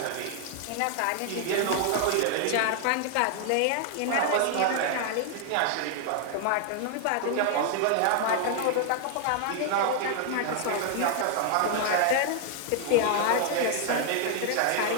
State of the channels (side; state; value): both; different; correlation 0.00